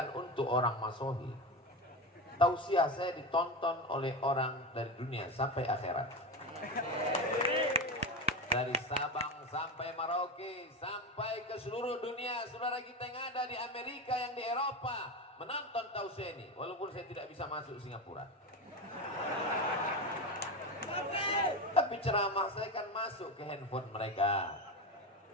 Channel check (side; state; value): both; normal; correlation 0.19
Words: untuk orang Masohi. Tausiah saya ditonton oleh orang dari dunia sampai akhirat. Dari Sabang sampai Merauke, sampai ke seluruh dunia. Saudara kita yang ada di Amerika, yang di Eropa, menonton tausiah ini. Walaupun saya tidak bisa masuk Singapura. Tapi ceramah saya kan masuk ke handphone mereka.